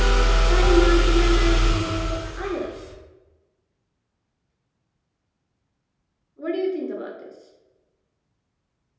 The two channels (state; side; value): identical; both; correlation 1.00